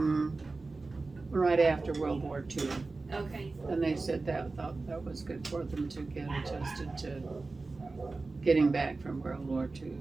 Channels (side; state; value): left; quieter; 3.6 dB